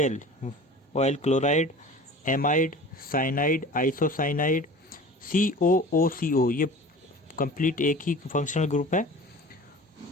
oil chloride, amide, cyanide, isocyanide, COOCO ये कंप्लीट एक ही फंक्शनल ग्रुप है,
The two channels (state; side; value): normal; both; correlation 0.40